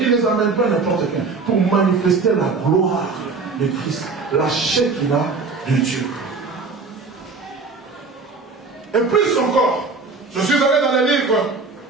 il ne les amène pas n'importe qui, pour manifester la gloire de Christ, la Shekinah de Dieu. Et plus encore, je suis allé dans les livres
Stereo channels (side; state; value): left; quieter; 4.2 dB